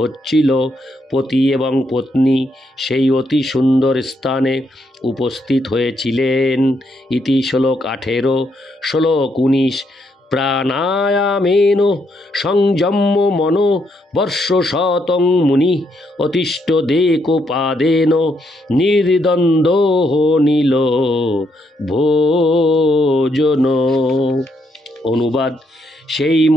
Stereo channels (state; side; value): normal; both; correlation 0.76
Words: হচ্ছিল। পতি এবং পত্নী সেই অতি সুন্দর স্থানে উপস্থিত হয়েছিলেন। ইতি শ্লোক 18। শ্লোক 19। প্রাণায়ামেন সংযম্য মনো বর্ষশতং মুনি অতিষ্ঠদেকোপাদেন নির্দ্বন্দ্ব নীল ভোজন। অনুবাদ: সেই